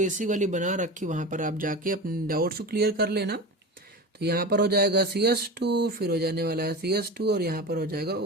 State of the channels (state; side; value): normal; both; correlation 0.29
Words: वाली बना रखी, वहाँ पर आप जाके अपने डाउट्स को क्लियर कर लेना। तो यहाँ पर हो जाएगा CS2, फिर हो जाने वाला है CS2 और यहाँ पर हो जाएगा